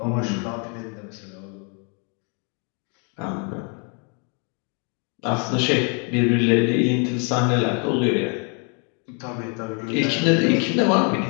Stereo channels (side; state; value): right; quieter; 37.6 dB